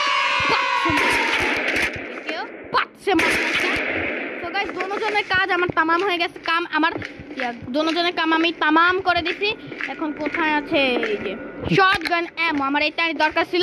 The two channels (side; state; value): both; identical; correlation 1.00